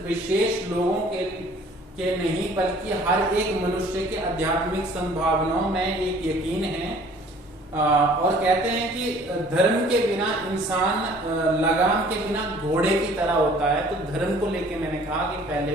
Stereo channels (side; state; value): both; normal; correlation 0.53